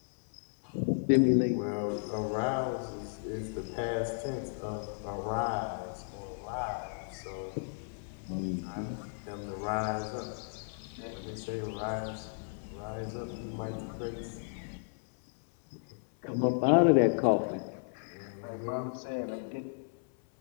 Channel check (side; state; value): right; silent; 55 dB below the other